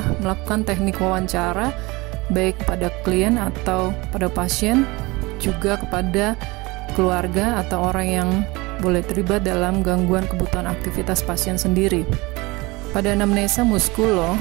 melakukan teknik wawancara, baik pada klien atau pada pasien, juga kepada keluarga atau orang yang boleh terlibat dalam gangguan kebutuhan aktivitas pasien sendiri. Pada anamnesa muskulo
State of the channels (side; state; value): left; quieter; 23.5 dB